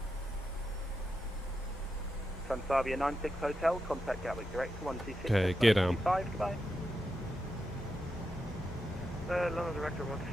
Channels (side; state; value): both; normal; correlation 0.87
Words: Transavia 96 Hotel, contact Gatwick direct to 126. Okay, gear down. Goodbye. London Director